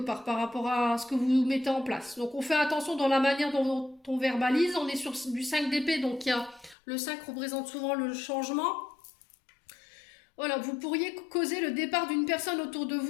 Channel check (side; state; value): right; drops out; at 6.8 s